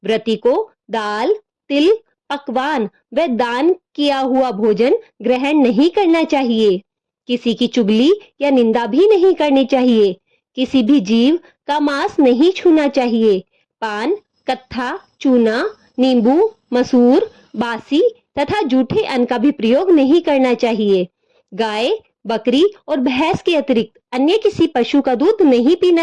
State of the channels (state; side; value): identical; both; correlation 1.00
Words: व्रती को दाल, तिल, पकवान व दान किया हुआ भोजन ग्रहण नहीं करना चाहिए। किसी की चुगली या निंदा भी नहीं करनी चाहिए। किसी भी जीव का मांस नहीं छूना चाहिए। पान, कत्था, चूना, नींबू, मसूर, बासी तथा जूठे अन्न का भी प्रयोग नहीं करना चाहिए। गाय, बकरी और भैंस के अतिरिक्त अन्य किसी पशु का दूध नहीं